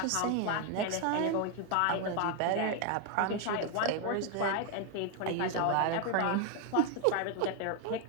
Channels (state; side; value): different; both; correlation 0.01